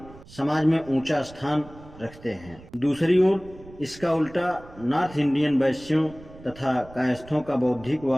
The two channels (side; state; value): right; noise; rumble, 20 dB below the sound